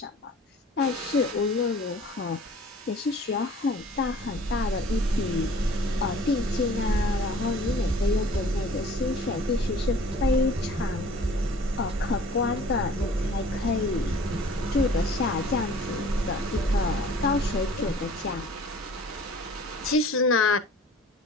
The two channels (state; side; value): normal; both; correlation 0.49